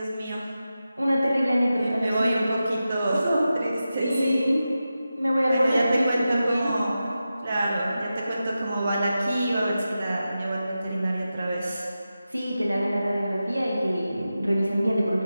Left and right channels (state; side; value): inverted; both; correlation -0.92